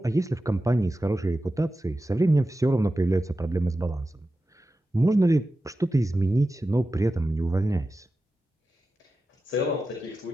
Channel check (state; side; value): normal; both; correlation 0.93